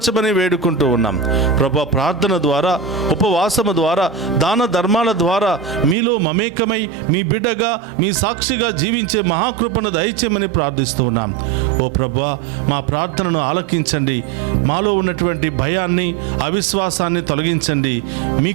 వేడుకుంటూ ఉన్నాం ప్రభువా. ప్రార్థన ద్వారా, ఉపవాసము ద్వారా, దాన ధర్మాల ద్వారా మీలో మమేకమై మీ బిడ్డగా, మీ సాక్షిగా జీవించే మహాకృపను దయచేయమని ప్రార్థిస్తూ ఉన్నాం. ఓ ప్రభువా, మా ప్రార్థనను ఆలకించండి. మాలో ఉన్నటువంటి భయాన్ని, అవిశ్వాసాన్ని తొలగించండి.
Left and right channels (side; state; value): left; drops out; at 6.0 s